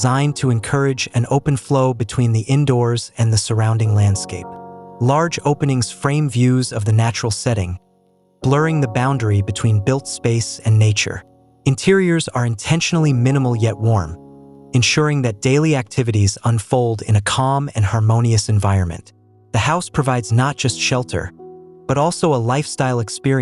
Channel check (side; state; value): both; identical; correlation 1.00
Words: to encourage an open flow between the indoors and the surrounding landscape. Large openings frame views of the natural setting, blurring the boundary between built space and nature. Interiors are intentionally minimal yet warm, ensuring that daily activities unfold in a calm and harmonious environment. The house provides not just shelter, but also a lifestyle